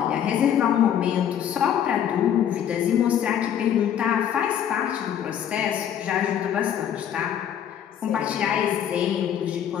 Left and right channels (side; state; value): right; quieter; 9.5 dB